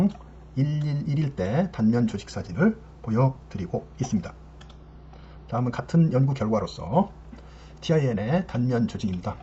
111일 때 단면 조직 사진을 보여드리고 있습니다. 다음은 같은 연구 결과로서 TIN의 단면 조직입니다.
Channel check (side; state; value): both; identical; correlation 1.00